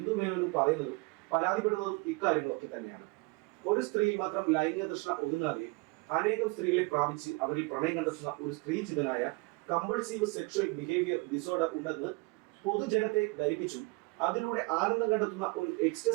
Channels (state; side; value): quieter; left; 27.4 dB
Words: മേനോനും പറയുന്നതും പരാതിപ്പെടുന്നതും ഇക്കാര്യങ്ങളൊക്കെ തന്നെയാണ്. ഒരു സ്ത്രീ മാത്രം ലൈംഗിക തൃഷ്ണ ഒതുങ്ങാതെ അനേകം സ്ത്രീകളെ പ്രാപിച്ച് അവരിൽ പ്രണയം കണ്ടെത്തുന്ന ഒരു സ്ത്രീചിതനായ കമ്പൾസീവ് സെക്ഷൽ ബിഹേവിയർ ഡിസോർഡർ ഉണ്ടെന്ന് പൊതുജനത്തെ ധരിപ്പിച്ചു അതിലൂടെ ആനന്ദം കണ്ടെത്തുന്ന ഒരു